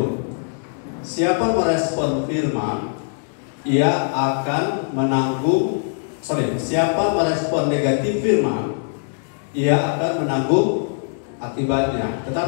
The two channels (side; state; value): right; silent; digital silence